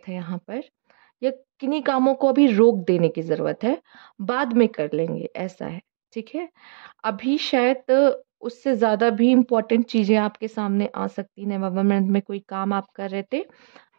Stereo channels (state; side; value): silent; left; digital silence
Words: है यहाँ पर, या किन्हीं कामों को अभी रोक देने की ज़रूरत है, बाद में कर लेंगे, ऐसा है, ठीक है? अभी शायद उससे ज़्यादा भी इम्पोर्टेंट चीज़ें आपके सामने आ सकती हैं। नवंबर मंथ में कोई काम आप कर रहे थे,